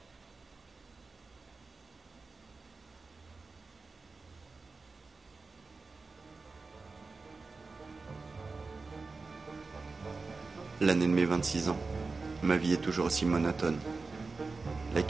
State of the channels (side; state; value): left; quieter; 4.1 dB